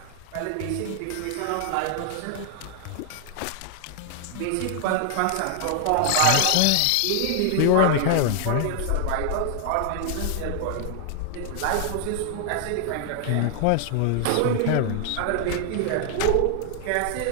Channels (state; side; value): different; both; correlation 0.00